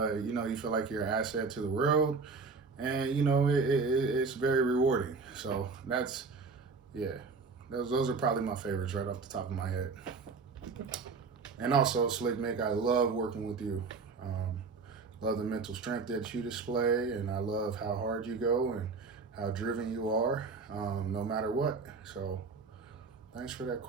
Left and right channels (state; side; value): quieter; left; 4.6 dB